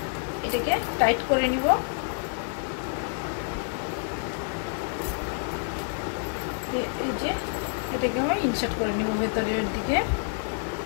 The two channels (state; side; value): silent; right; 59 dB below the other